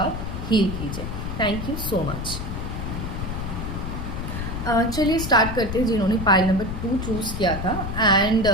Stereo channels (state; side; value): noise; left; rumble, 5 dB below the sound